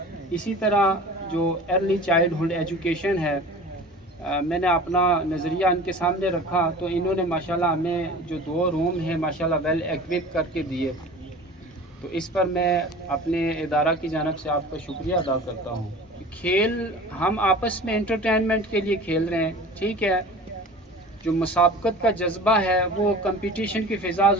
इसी तरह जो अर्ली चाइल्डहुड एजुकेशन है, मैंने अपना नज़रिया इनके सामने रखा, तो इन्होंने माशाल्लाह हमें जो 2 रूम हैं माशाल्लाह वेल इक्विप करके दिए। तो इस पर मैं अपने इदारा की जानिब से आपका शुक्रिया अदा करता हूँ। खेल हम आपस में एंटरटेनमेंट के लिए खेल रहे हैं, ठीक है। जो मुसाबकत का जज्बा है, वो कंपटीशन की फ़िज़ा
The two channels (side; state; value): both; normal; correlation 0.40